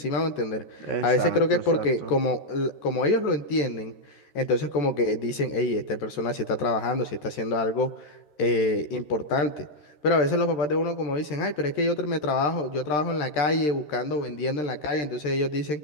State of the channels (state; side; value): late; right; 13 ms